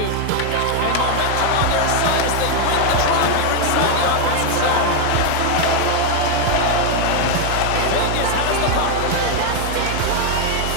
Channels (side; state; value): both; different; correlation 0.01